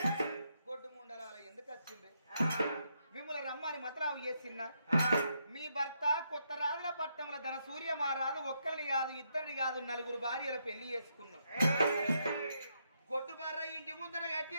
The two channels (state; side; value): inverted; both; correlation -0.78